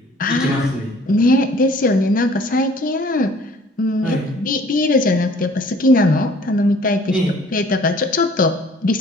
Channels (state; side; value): normal; both; correlation 0.54